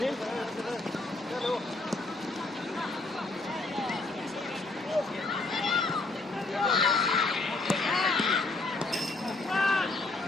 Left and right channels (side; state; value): right; quieter; 3.2 dB